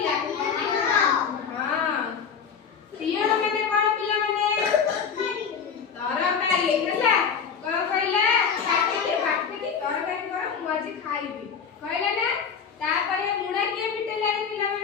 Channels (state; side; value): quieter; right; 6.6 dB